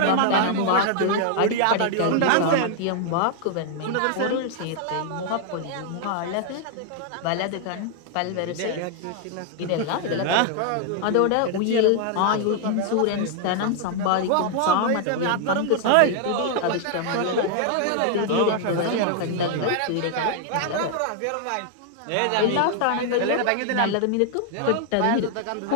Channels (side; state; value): both; different; correlation 0.00